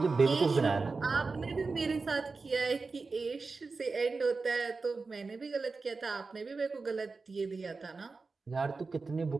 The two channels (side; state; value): left; quieter; 4.2 dB